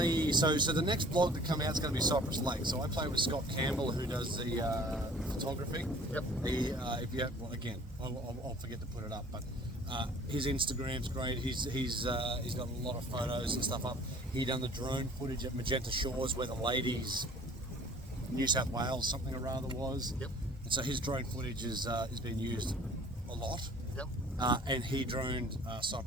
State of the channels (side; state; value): both; normal; correlation 0.50